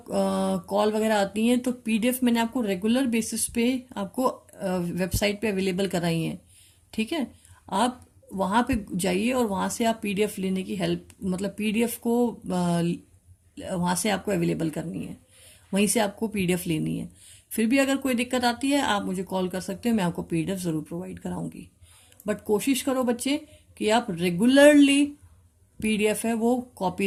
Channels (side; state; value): both; identical; correlation 1.00